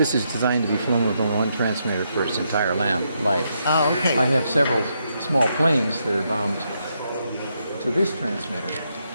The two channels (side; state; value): both; inverted; correlation -0.79